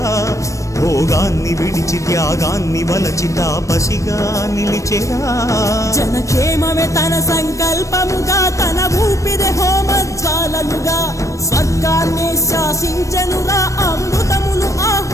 భోగాన్ని విడిచి త్యాగాన్ని వలచి తాపసిగా నిలిచెరా జనక్షేమమే తన సంకల్పముగా తన ఊపిరి హోమజ్వాలలుగా స్వర్గాన్ని శాసించెనురా అమృతమును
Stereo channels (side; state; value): right; late; 0.15 ms